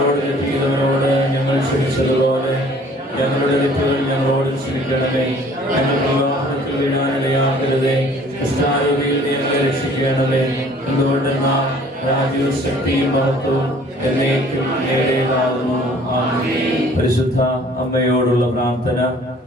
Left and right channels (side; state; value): both; normal; correlation 0.54